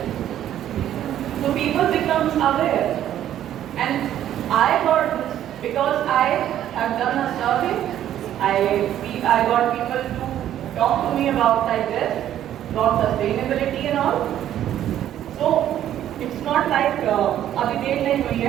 So people become aware. And I got this because I have done a survey. I got people to talk to me about like this, about sustainability and all. So it's not like अभी देर नहीं हुई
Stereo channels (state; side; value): quieter; left; 11.4 dB